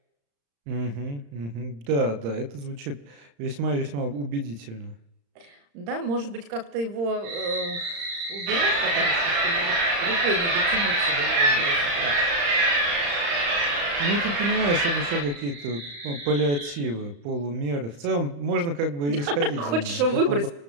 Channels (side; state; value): left; late; 35 ms